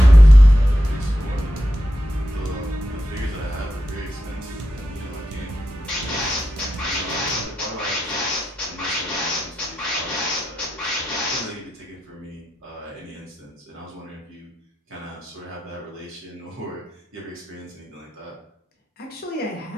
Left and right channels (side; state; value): both; normal; correlation 0.89